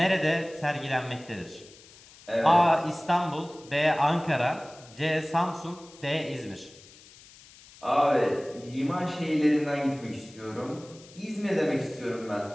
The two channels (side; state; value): left; noise; hiss, 22 dB below the sound